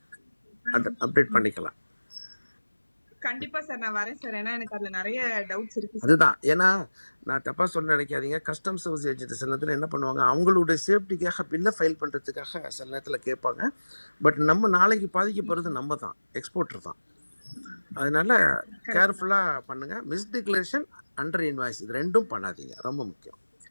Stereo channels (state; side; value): inverted; both; correlation -1.00